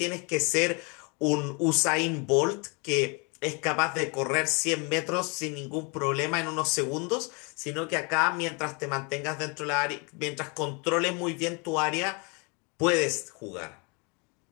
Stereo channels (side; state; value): right; quieter; 32.0 dB